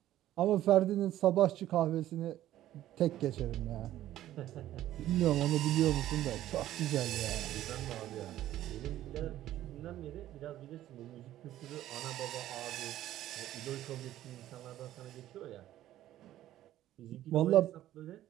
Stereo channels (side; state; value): left; quieter; 13.4 dB